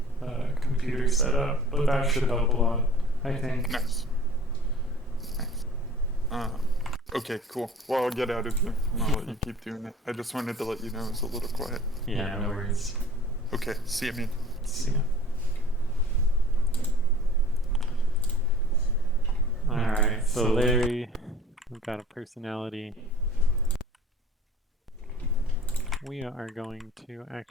computer set up, but that should help a lot, I think. Nice. Okay, cool. Well, I'll get out of here and I'll let you keep doing it. I just wanted to let you know it was a little quiet. Yeah, no worries. Okay, see you, man. See ya. Alright, So Larry, we've got a personality. We are going to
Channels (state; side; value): normal; both; correlation 0.45